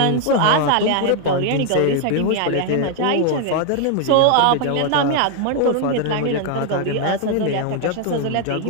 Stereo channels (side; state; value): both; different; correlation 0.00